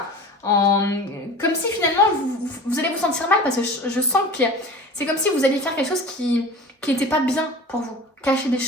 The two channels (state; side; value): normal; both; correlation 0.37